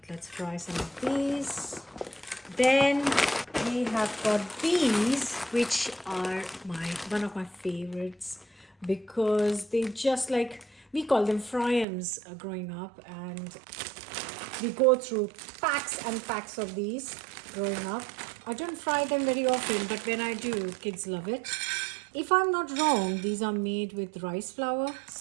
let's fry some of these. Then we have got these, which are one of my favorites because they just like, we call them fryams growing up, and we go through packs and packs of these growing up. I don't fry them very often, but when I do, kids love it. If I'm not wrong, these are made with rice flour.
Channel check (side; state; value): left; drops out; at 11.9 s